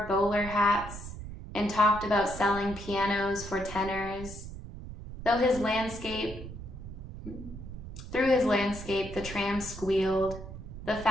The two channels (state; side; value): noise; right; rumble, 11 dB below the sound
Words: bowler hats and talked about selling pianos for tenors. Through his landscape, the tram squealed. The